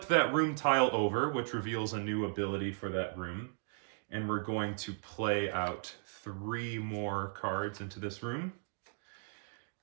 that room tile over, which reveals a new ability for that room. And we're going to play out 3 more cards into this room.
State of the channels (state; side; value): silent; left; digital silence